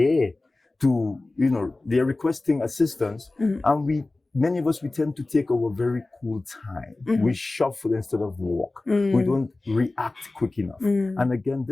to, they're requesting assistance, and many of us, we tend to take our very cool time. We shuffle instead of walk. We don't react quick enough. And again,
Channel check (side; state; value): right; quieter; 3.1 dB